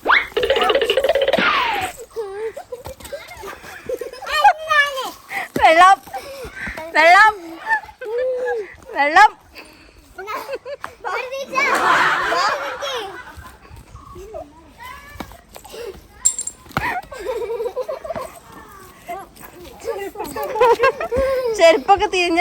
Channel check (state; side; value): identical; both; correlation 1.00